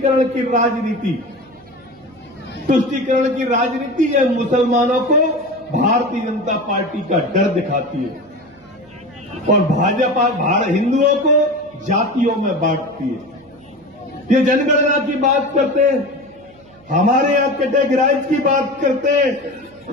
की राजनीति। तुष्टीकरण की राजनीति है, मुसलमानों को भारतीय जनता पार्टी का डर दिखाती है और भाजपा हिंदुओं को जातियों में बांटती है। ये जनगणना की बात करते हैं, हमारे यहां कैटेगराइज की बात करते हैं।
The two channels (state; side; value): noise; right; hum, 27 dB below the sound